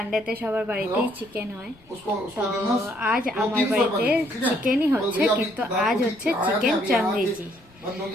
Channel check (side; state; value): left; noise; rumble, 28 dB below the sound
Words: সবার বাড়িতেই চিকেন হয়। তো আজ আমার বাড়িতে চিকেনই হচ্ছে, কিন্তু আজ হচ্ছে চিকেন চাঙ্গেজি।